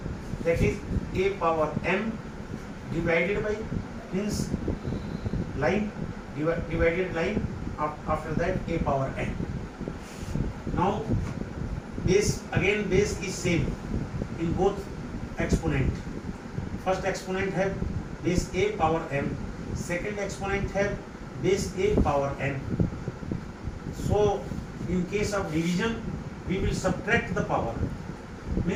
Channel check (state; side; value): identical; both; correlation 1.00